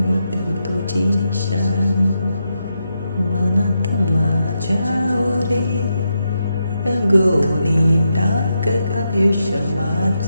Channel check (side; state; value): both; inverted; correlation -0.83